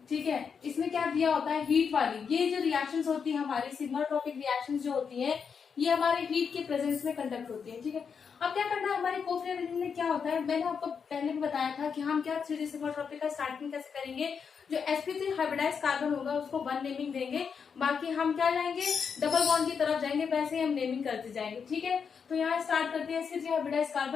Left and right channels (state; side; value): quieter; right; 6.3 dB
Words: ठीक है, इसमें क्या दिया होता है, हीट वाली। ये जो रिएक्शंस होती है हमारी सिग्माट्रोपिक रिएक्शंस जो होती है, ये हमारे हीट के प्रेजेंस में कंडक्ट होती है। ठीक है, अब क्या करना है, हमारे कोप रीअरेंजमेंट में क्या होता है, मैंने आपको पहले भी बताया था कि हम क्या 3D सिग्माट्रोपिक का स्टार्टिंग कैसे करेंगे। जो sp3 हाइब्रिडाइज कार्बन होगा उसको 1 नेमिंग देंगे, बाकी हम क्या जाएंगे, डबल बॉन्ड की तरफ जाएंगे, वैसे ही हम नेमिंग करते जाएंगे। ठीक है, तो यहाँ स्टार्ट करते हैं। sp3 हाइब्रिडाइज